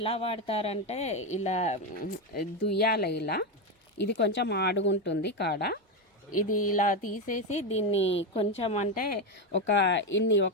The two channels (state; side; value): normal; both; correlation 0.11